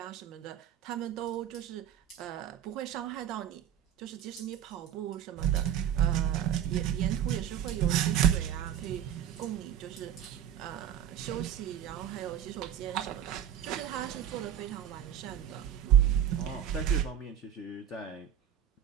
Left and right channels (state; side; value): quieter; left; 10.1 dB